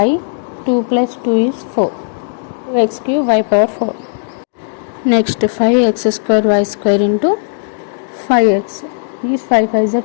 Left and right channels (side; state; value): right; silent; digital silence